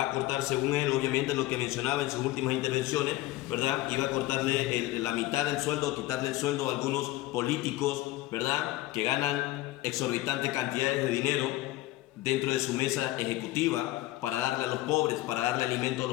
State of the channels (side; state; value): right; quieter; 17.1 dB